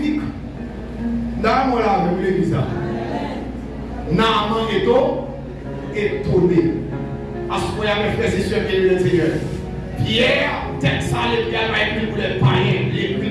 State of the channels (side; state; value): both; identical; correlation 1.00